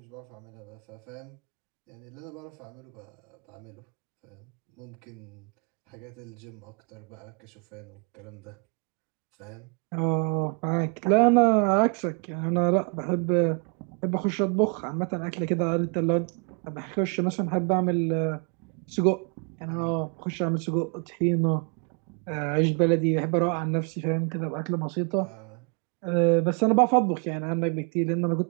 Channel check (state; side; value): quieter; left; 35.1 dB